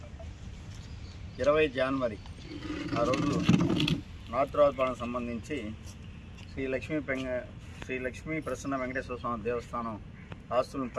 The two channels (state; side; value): identical; both; correlation 1.00